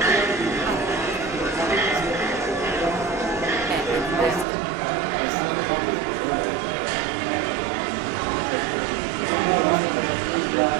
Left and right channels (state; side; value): drops out; left; at 4.5 s